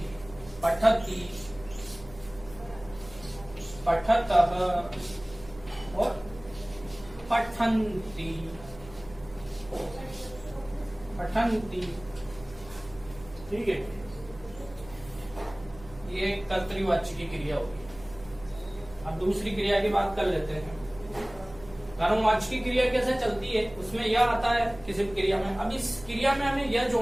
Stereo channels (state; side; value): noise; right; hum, 19 dB below the sound